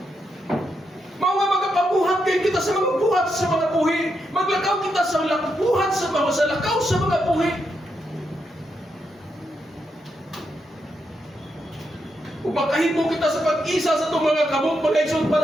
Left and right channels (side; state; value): both; normal; correlation 0.82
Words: Mao nga magapabuhat kay kita sa mga buhat sa mga buhi. Maglakaw kita sa buhat sa lakaw sa mga buhi. Upakahimo kita sa pag-isa sa itong mga kamot mga igsoon